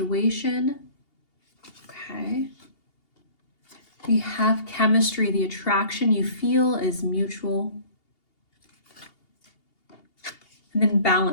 Okay. We have chemistry. The attraction you feel is mutual. And then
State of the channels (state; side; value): late; right; 2.8 ms